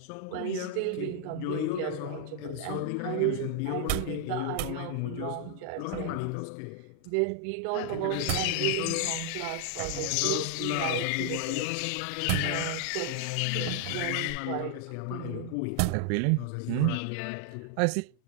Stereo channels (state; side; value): different; both; correlation 0.00